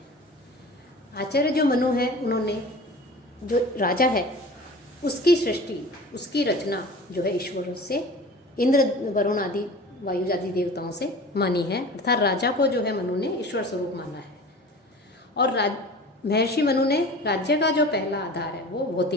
आचार्य जो मनु है, उन्होंने जो राजा है उसकी सृष्टि, उसकी रचना जो है ईश्वर से, इंद्र, वरुण आदि, वायु आदि देवताओं से मानी है। अर्थात राजा को जो है मनु ने ईश्वर स्वरूप माना है। और महर्षि मनु ने राज्य का जो पहला आधार है वो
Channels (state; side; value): normal; both; correlation 0.39